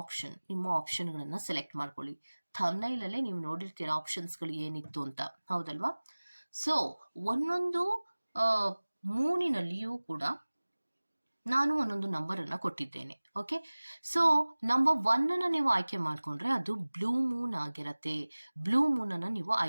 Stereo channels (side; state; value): both; inverted; correlation -1.00